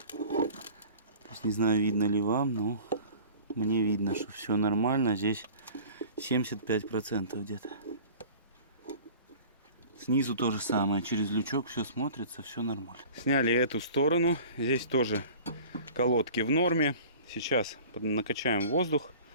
То есть не знаю, видно ли вам, но мне видно, что все нормально. Здесь 75% где-то. Снизу то же самое. Через лючок все смотрится, все нормально. Сняли эту сторону. Здесь тоже колодки в норме. Сейчас накачаем воздух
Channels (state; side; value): inverted; both; correlation -0.43